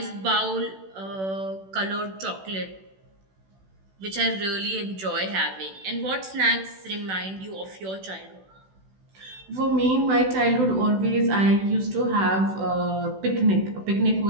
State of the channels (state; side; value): late; left; 16 ms